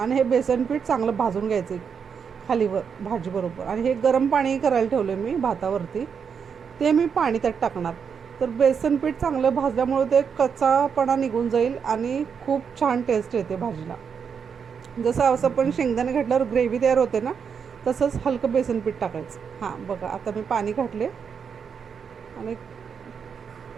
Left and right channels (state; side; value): quieter; left; 6.7 dB